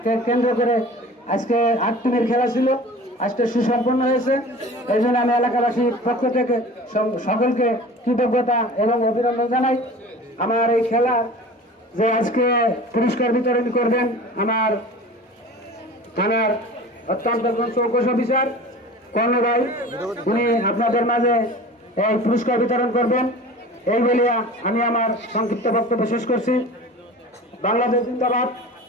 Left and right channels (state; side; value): normal; both; correlation 0.39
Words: কেন্দ্র করে আজকে 8 টিমের খেলা ছিল, আজকে সুসম্পন্ন হয়েছে। এই জন্য আমি এলাকাবাসীর পক্ষ থেকে সকলকে কৃতজ্ঞতা এবং অভিনন্দন জানাই। আমার এই খেলা যে আজকে পুরস্কার বিতরণ করবেন আমার থানার অত্যন্ত চৌকস অফিসার কর্ণ ভাই, উনি আপনাদের মাঝে এই পুরস্কার বিতরণ করবেন। এই বলিয়া আমি আমার সংক্ষিপ্ত বক্তব্য শেষ করছি। বাংলাদেশ জিন্দাবাদ,